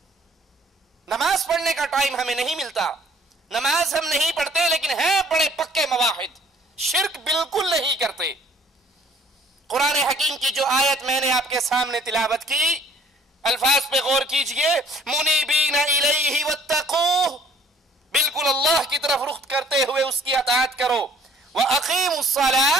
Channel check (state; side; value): normal; both; correlation 0.55